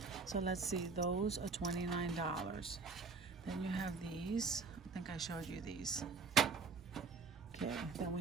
So let's see, those are $29. Then you have these. I think I showed you these. Okay, then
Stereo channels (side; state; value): left; quieter; 4.6 dB